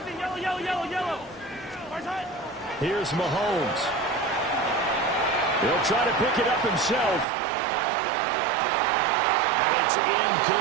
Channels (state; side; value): drops out; left; at 7.2 s